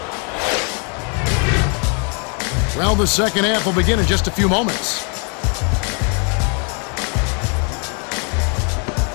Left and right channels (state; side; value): quieter; right; 37.7 dB